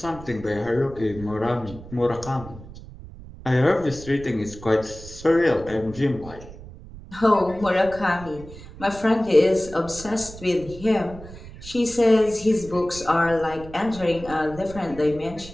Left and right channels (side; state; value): right; noise; rumble, 16 dB below the sound